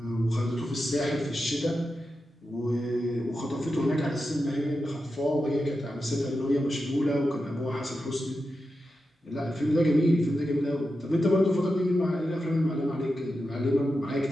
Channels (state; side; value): normal; both; correlation 0.90